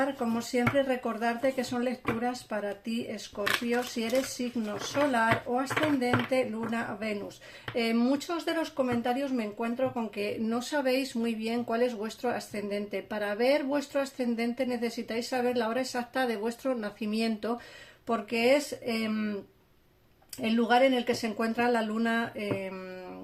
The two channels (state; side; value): identical; both; correlation 1.00